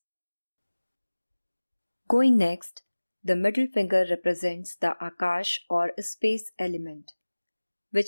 Going next, the middle finger represents the Akash or space element,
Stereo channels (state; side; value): inverted; both; correlation -1.00